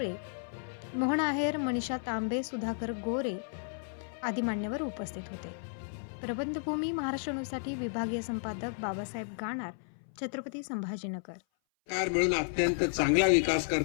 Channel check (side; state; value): right; silent; 56 dB below the other